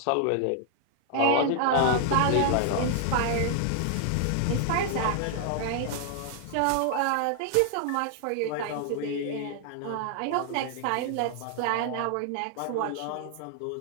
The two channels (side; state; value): both; different; correlation 0.00